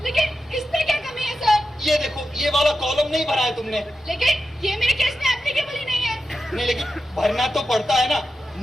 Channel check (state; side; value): normal; both; correlation 0.90